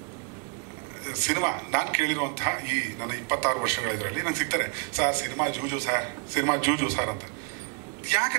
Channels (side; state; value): left; quieter; 37.7 dB